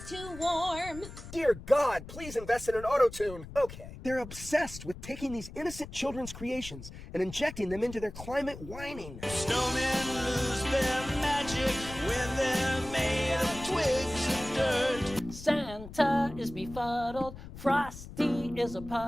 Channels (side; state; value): left; noise; rumble, 13 dB below the sound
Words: too warm. Dear God, please invest in an auto-tune. Okay. They're obsessed with taking these innocent children's creations and injecting them into their climate whining. Snowmen lose their magic when they're made of twigs and dirt. Santa is befuddled, Frosty is a